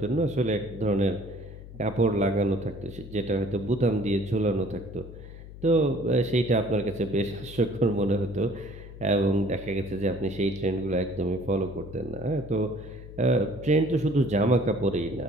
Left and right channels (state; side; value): noise; left; hum, 15 dB below the sound